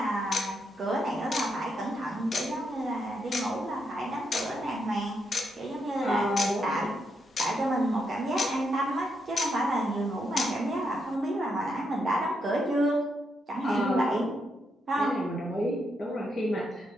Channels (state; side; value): normal; both; correlation 0.80